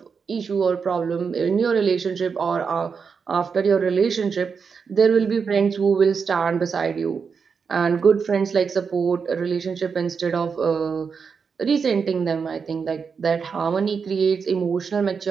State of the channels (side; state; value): left; quieter; 5.8 dB